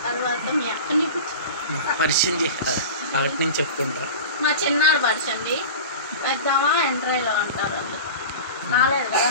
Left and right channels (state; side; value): inverted; both; correlation -0.33